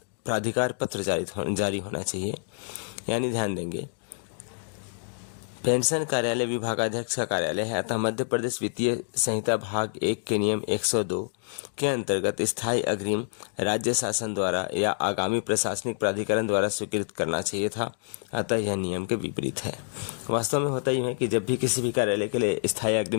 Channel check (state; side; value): silent; right; digital silence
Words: प्राधिकार पत्र जारी होना चाहिए। यानी ध्यान देंगे, पेंशन कार्यालय विभागाध्यक्ष का कार्यालय है, अतः मध्य प्रदेश वित्तीय संहिता भाग 1 के नियम 102 के अंतर्गत स्थायी अग्रिम राज्य शासन द्वारा या आगामी प्रशासनिक प्राधिकरण द्वारा स्वीकृत करना चाहिए था, अतः यह नियम के विपरीत है। वास्तव में होता ही है कि जब भी किसी भी कार्यालय के लिए स्थायी